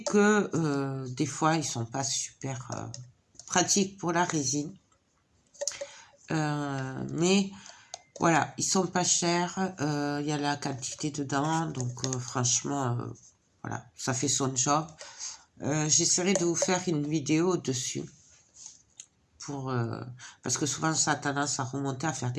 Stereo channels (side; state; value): both; identical; correlation 1.00